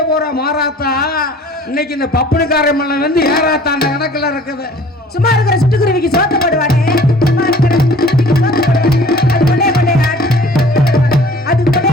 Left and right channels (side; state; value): both; normal; correlation 0.50